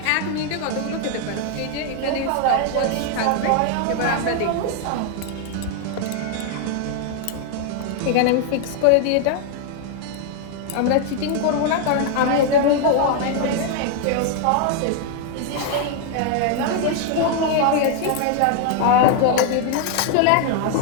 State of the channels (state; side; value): different; both; correlation 0.00